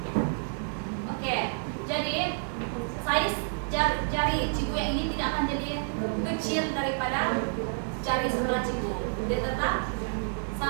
di sebelah Cibu. Dia tetap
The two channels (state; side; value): silent; left; digital silence